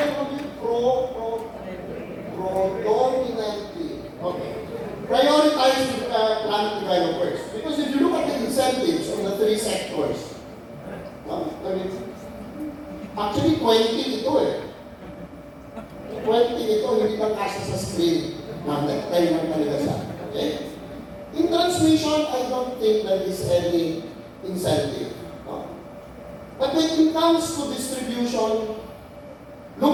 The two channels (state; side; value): identical; both; correlation 1.00